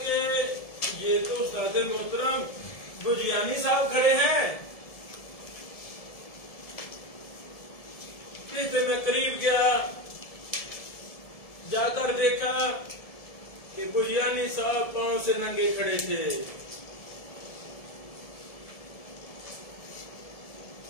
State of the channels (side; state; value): right; late; 1.7 ms